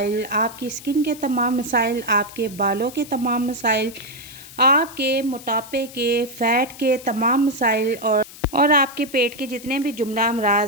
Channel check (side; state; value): left; noise; hiss, 17 dB below the sound